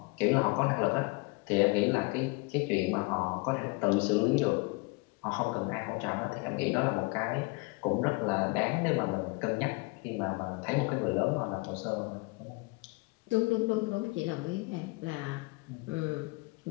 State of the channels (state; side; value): quieter; right; 27.1 dB